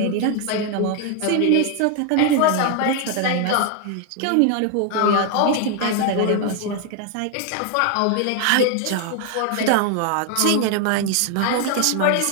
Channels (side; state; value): both; different; correlation 0.00